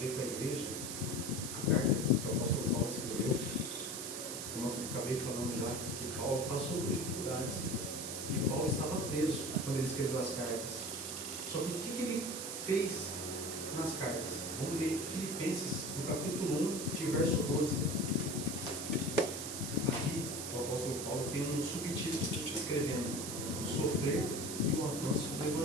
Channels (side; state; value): right; noise; hiss, 5 dB below the sound